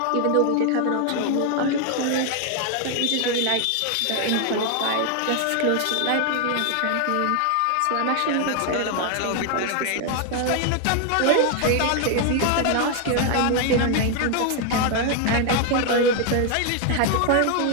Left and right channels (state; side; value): different; both; correlation 0.00